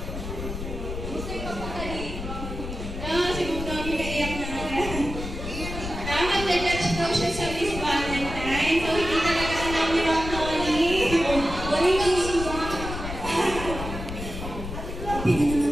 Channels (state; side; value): noise; left; rumble, 7 dB below the sound